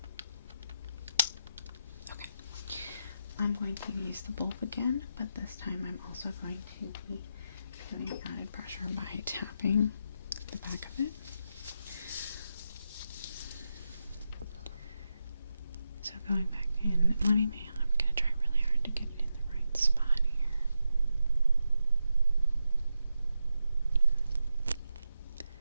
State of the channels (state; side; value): inverted; both; correlation -0.86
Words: Okay. I'm going to use the bulb again, but this time I'm also going to be doing added pressure by tapping the back of it. So going back in, I'm going to try really hard to get it in the right spot here.